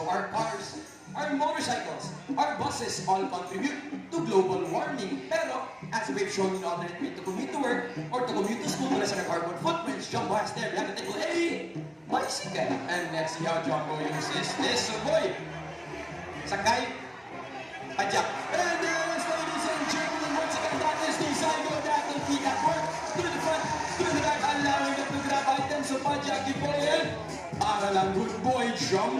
our cars, our motorcycles, our buses all contribute to global warming. Pero, as we've shown in alternate way to commute to work or to commute to school mula sa carbon footprints, Jumbo has there, we have to take a bicycle. And let's see how Jumbo uses this. So boy, sakay, pajak. And ladies and gentlemen, once again, that is the cycle that will feet at work. To the front, to the back, allowing them to grab items. So pajak, di po yan. Para lang good boy,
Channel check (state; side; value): identical; both; correlation 1.00